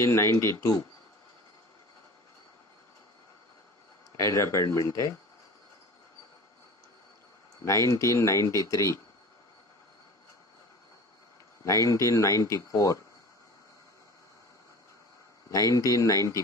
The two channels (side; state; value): both; normal; correlation 0.38